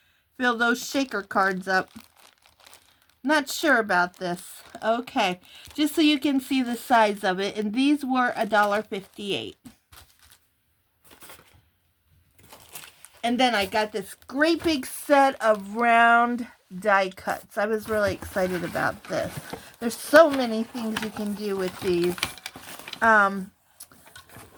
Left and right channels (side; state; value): both; identical; correlation 1.00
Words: fill those shaker cards up. Not sure about this. Okay, just so you can see the size of it. And these were $1.58. And then I got this great big set of round die cuts. I was really excited about this. There's so many things you can do with these.